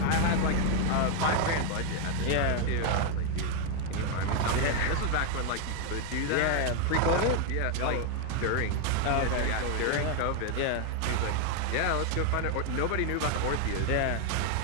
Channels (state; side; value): different; both; correlation 0.01